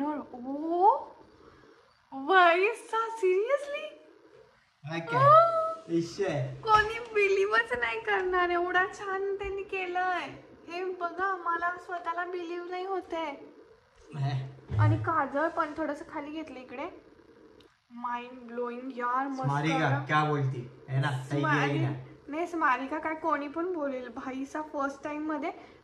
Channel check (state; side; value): identical; both; correlation 1.00